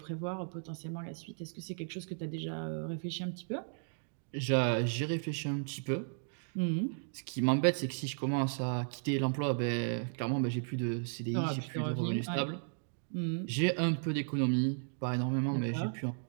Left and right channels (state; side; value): silent; left; digital silence